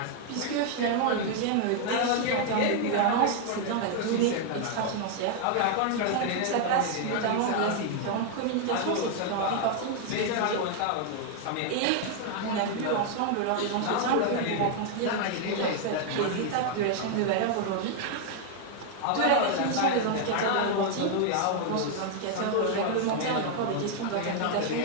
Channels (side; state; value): both; different; correlation 0.00